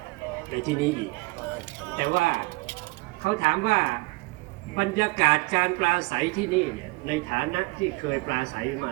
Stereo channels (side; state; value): left; quieter; 25.5 dB